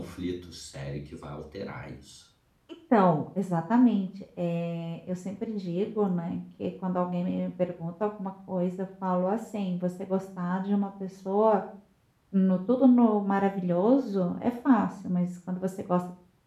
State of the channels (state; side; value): identical; both; correlation 1.00